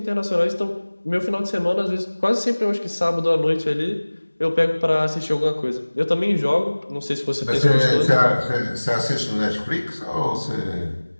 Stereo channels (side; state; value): both; inverted; correlation -1.00